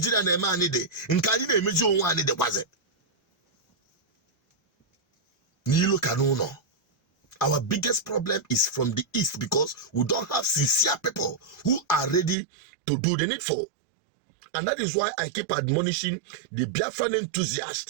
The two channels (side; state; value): left; drops out; at 12.4 s